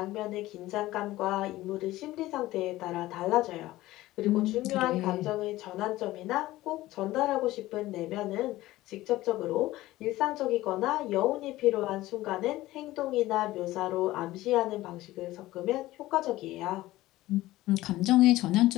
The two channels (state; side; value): quieter; right; 16.9 dB